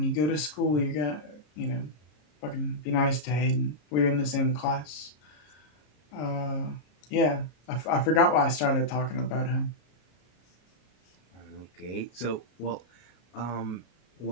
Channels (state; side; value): late; right; 33 ms